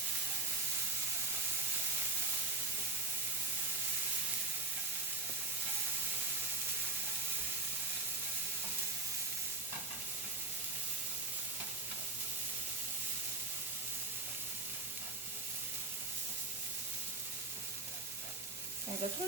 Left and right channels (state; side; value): quieter; left; 4.0 dB